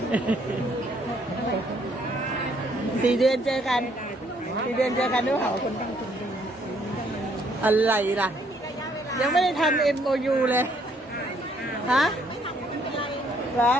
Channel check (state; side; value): normal; both; correlation 0.67